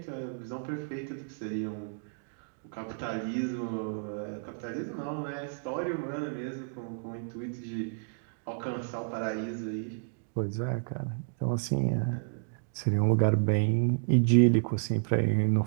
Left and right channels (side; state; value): left; silent; digital silence